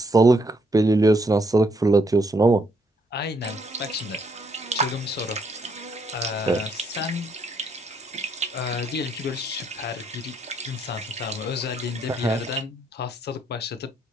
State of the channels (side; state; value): both; normal; correlation 0.72